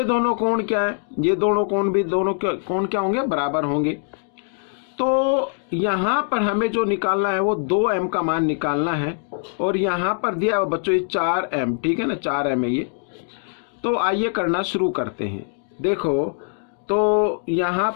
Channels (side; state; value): right; silent; digital silence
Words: दोनों कोण क्या है, ये दोनों कोण भी, दोनों कोण क्या होंगे, बराबर होंगे। तो यहाँ पर हमें जो निकालना है वो 2m का मान निकालना है। और यहाँ पर दिया है बच्चों ये 4m, ठीक है ना, 4m है ये। तो आइए करना शुरू करते हैं। देखो, तो यहाँ